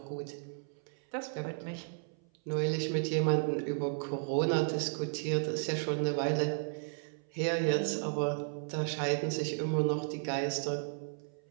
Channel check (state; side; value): silent; left; 55 dB below the other